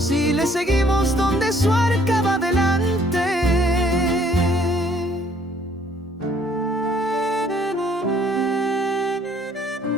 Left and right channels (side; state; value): both; normal; correlation 0.62